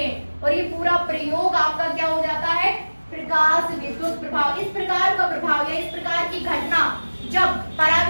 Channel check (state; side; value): inverted; both; correlation -1.00